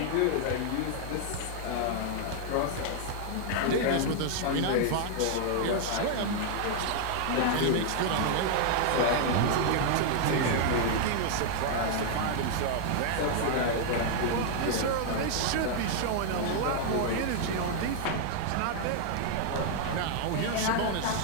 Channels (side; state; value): both; different; correlation 0.00